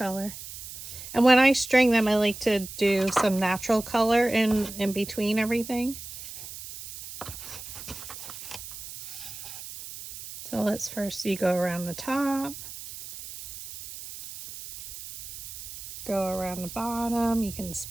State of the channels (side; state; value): right; noise; hiss, 12 dB below the sound